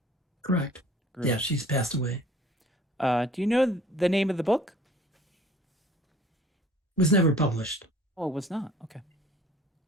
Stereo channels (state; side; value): normal; both; correlation 0.51